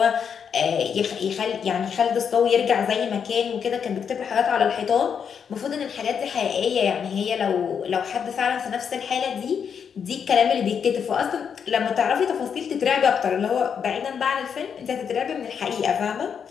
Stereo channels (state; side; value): quieter; right; 7.1 dB